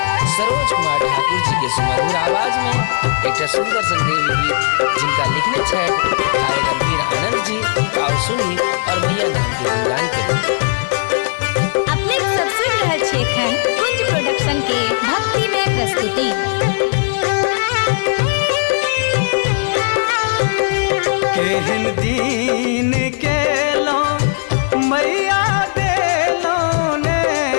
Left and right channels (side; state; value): right; silent; digital silence